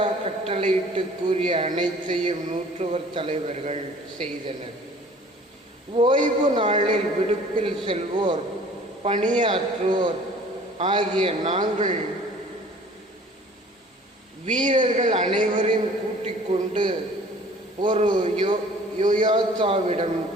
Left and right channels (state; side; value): normal; both; correlation 0.50